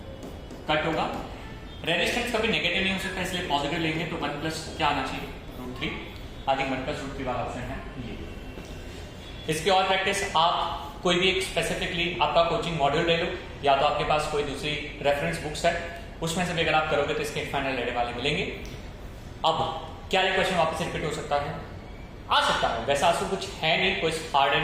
cut होगा। रेजिस्टेंस कभी नेगेटिव नहीं हो सकता इसलिए पॉजिटिव लेंगे, तो 1 प्लस क्या आना चाहिए रूट 3, आगे 1 प्लस रूट 3 वाला ऑप्शन है ये। इसकी और प्रैक्टिस आप कोई भी एक स्पेसिफिकली आपका कोचिंग मॉड्यूल ले लो, या तो आपके पास कोई दूसरी रेफरेंस बुक्स है, उसमें से भी अगर आप करोगे तो इसके फाइनल रेडे वाले मिलेंगे। अब क्या ये क्वेश्चन वापस रिपीट हो सकता है? आ सकता है, वैसा आंसर कुछ है नहीं, कोई हार्ड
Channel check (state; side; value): identical; both; correlation 1.00